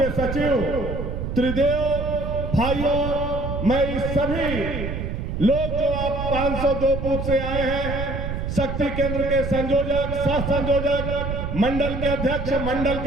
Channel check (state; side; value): noise; right; rumble, 4 dB below the sound